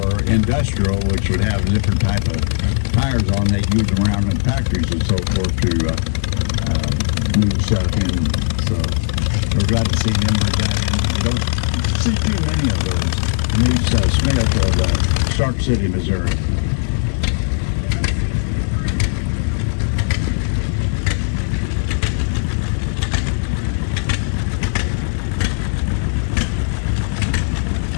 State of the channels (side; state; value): right; silent; digital silence